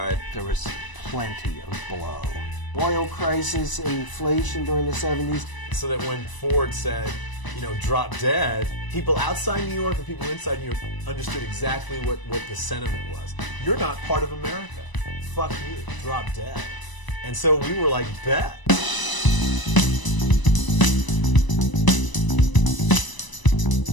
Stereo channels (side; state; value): right; late; 1.0 ms